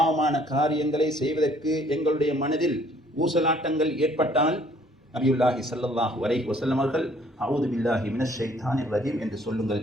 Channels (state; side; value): normal; both; correlation 0.60